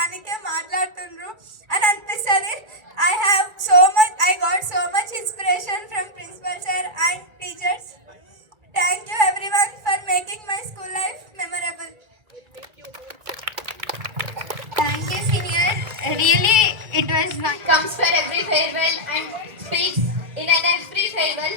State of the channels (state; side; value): late; left; 2.3 ms